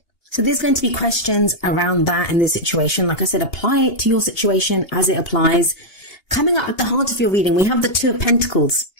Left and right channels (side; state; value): right; late; 2.8 ms